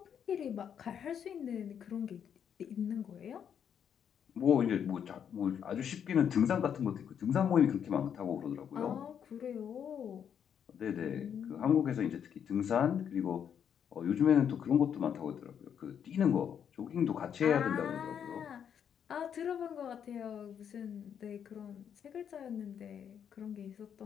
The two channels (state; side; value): quieter; right; 8.3 dB